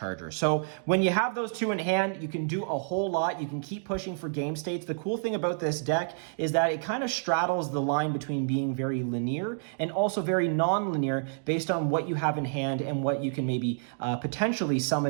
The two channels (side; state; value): left; silent; digital silence